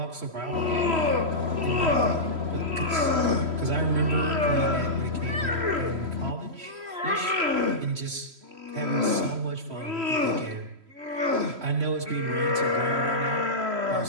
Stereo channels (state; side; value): late; left; 3.1 ms